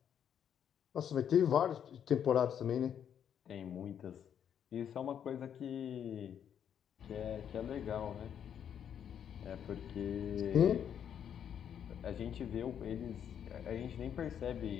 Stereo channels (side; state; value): right; quieter; 8.8 dB